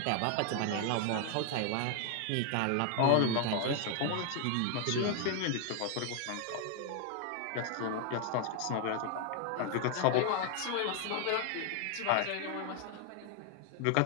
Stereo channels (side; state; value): both; different; correlation 0.00